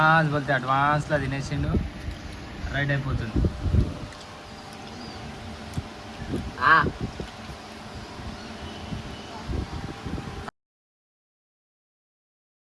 పోతే అడ్వాన్స్లో తినేసిండు రైట్ అయిపోతుంది.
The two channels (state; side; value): identical; both; correlation 1.00